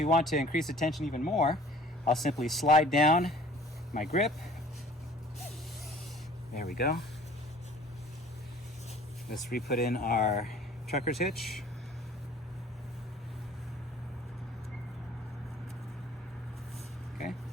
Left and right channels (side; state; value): both; normal; correlation 0.50